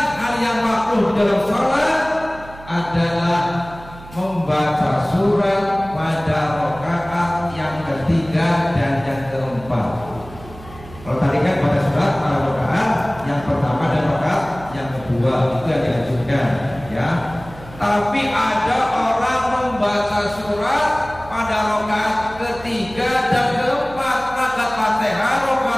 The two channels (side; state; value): right; noise; hum, 18 dB below the sound